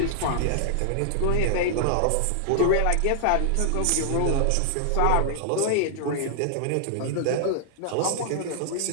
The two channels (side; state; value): both; different; correlation -0.01